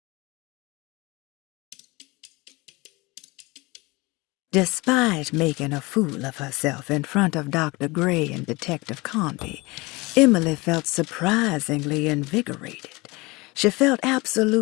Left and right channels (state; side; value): quieter; right; 24.0 dB